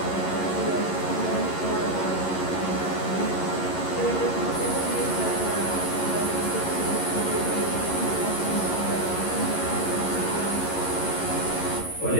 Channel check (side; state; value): right; late; 11 ms